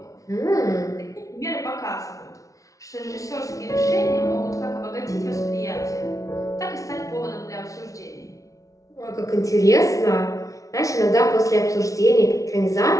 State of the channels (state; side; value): late; right; 0.16 ms